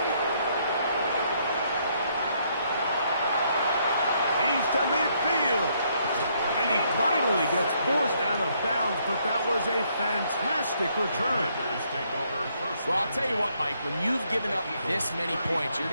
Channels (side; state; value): both; inverted; correlation -0.71